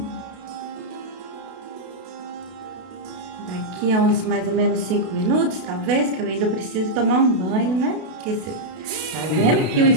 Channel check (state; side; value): late; left; 32 ms